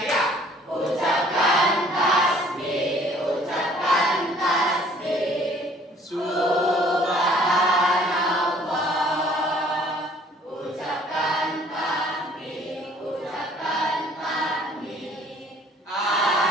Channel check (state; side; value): normal; both; correlation 0.56